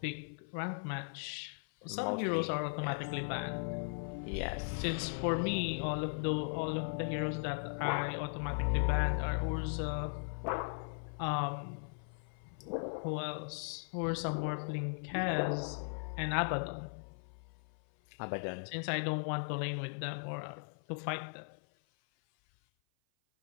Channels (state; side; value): silent; right; 53 dB below the other